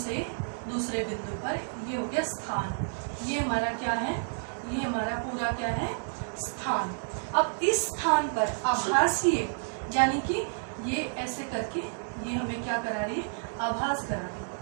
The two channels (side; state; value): left; silent; digital silence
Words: दूसरे बिंदु पर, ये हो गया स्थान, ये हमारा क्या है, ये हमारा पूरा क्या है, स्थान। अब इस स्थान पर आभासीय, यानी कि ये ऐसे करके ये हमें क्या करा रही है, आभास करा रही है।